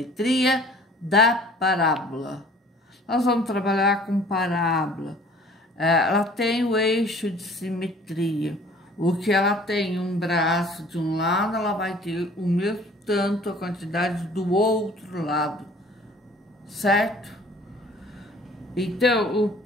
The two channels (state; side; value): normal; both; correlation 0.51